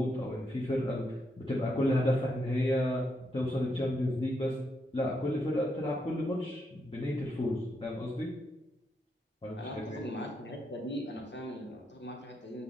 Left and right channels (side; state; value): both; normal; correlation 0.80